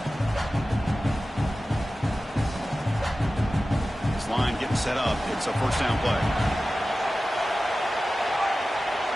Line getting set up. It's a first down play.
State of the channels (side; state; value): both; normal; correlation 0.95